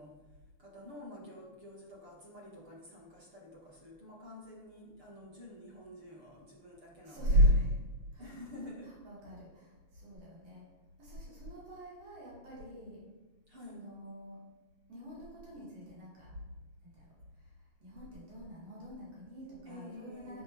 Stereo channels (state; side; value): late; left; 6.8 ms